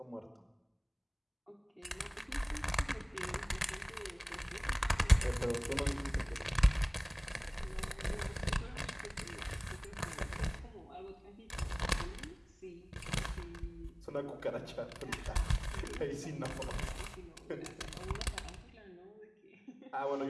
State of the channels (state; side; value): identical; both; correlation 1.00